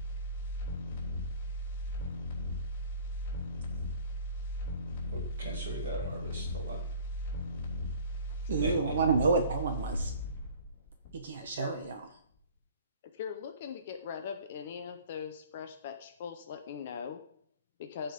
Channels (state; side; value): inverted; both; correlation -0.46